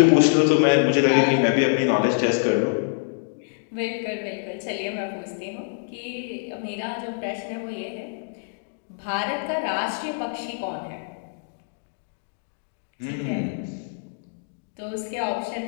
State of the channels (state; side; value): silent; right; digital silence